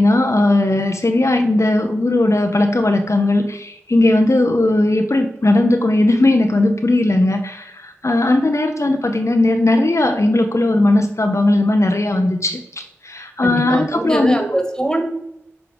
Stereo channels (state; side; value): normal; both; correlation 0.92